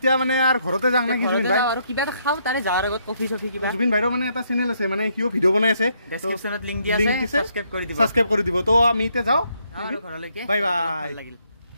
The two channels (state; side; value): inverted; both; correlation -0.73